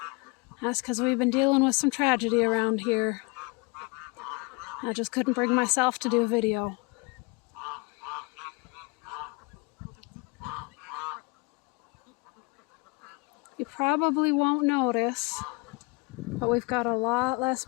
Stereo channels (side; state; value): right; quieter; 28.8 dB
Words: That's because we've been dealing with some tragedy around here. I just couldn't bring myself to do a video. You probably won't notice, but we've got a lot less